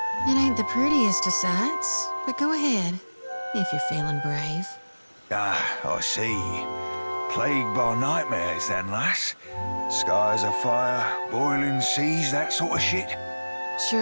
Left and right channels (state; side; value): inverted; both; correlation -1.00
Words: It ain't the prettiest of sights, but go ahead, if you're feeling brave. Ah, I see. Plagued by nightmares then, lass. Skies afire, boiling seas, that sort of shit.